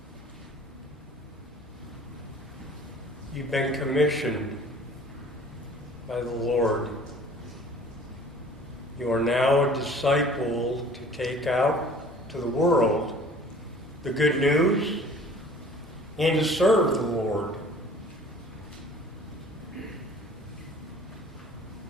you've been commissioned by the Lord. You are now a disciple to take out to the world the good news and to serve the Lord.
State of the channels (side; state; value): both; normal; correlation 0.49